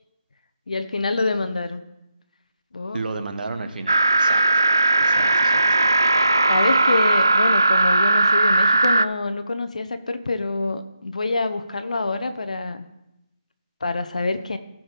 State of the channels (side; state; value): both; inverted; correlation -0.83